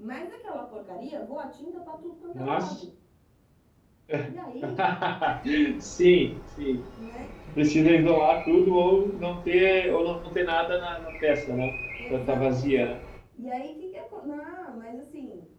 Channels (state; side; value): identical; both; correlation 1.00